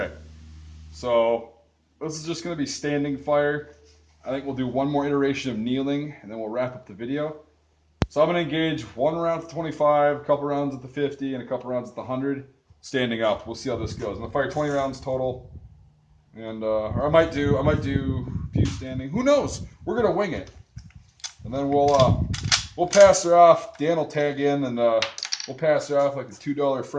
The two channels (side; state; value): both; identical; correlation 1.00